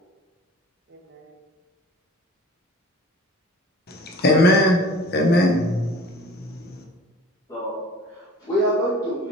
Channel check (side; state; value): both; normal; correlation 0.45